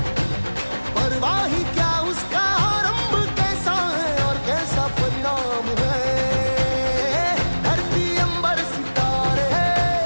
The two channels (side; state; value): both; inverted; correlation -1.00